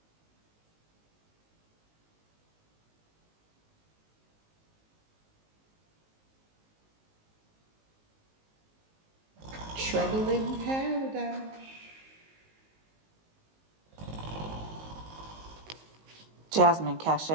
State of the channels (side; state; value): left; late; 19 ms